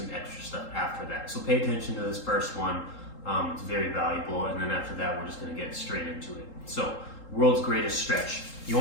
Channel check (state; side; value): late; right; 3.8 ms